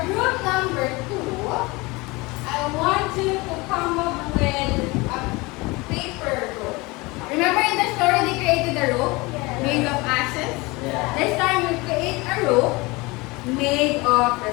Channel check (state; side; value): quieter; right; 23.9 dB